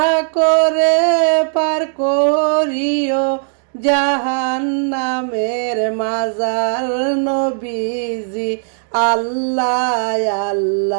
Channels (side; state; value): left; silent; digital silence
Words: করে পার করিও জাহান্নামের মাজার নবীজি। আল্লাহ